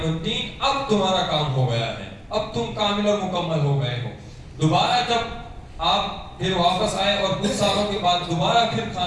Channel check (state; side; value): identical; both; correlation 1.00